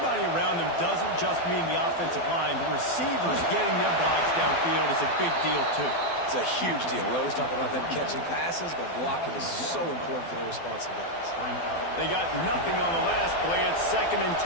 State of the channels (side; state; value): right; late; 12 ms